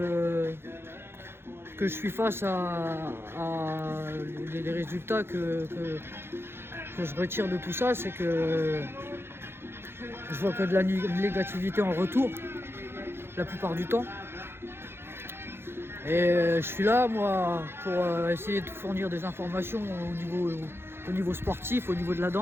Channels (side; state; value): left; late; 0.11 ms